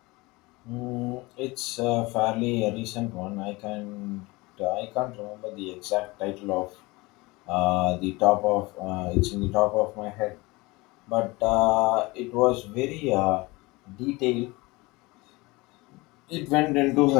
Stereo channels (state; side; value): quieter; right; 23.1 dB